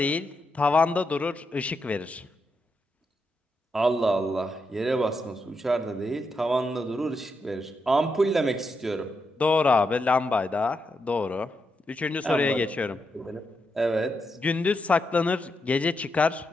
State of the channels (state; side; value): normal; both; correlation 0.83